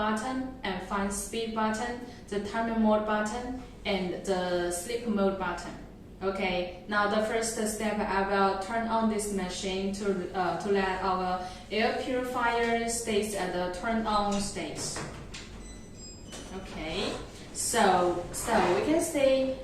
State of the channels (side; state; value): both; identical; correlation 1.00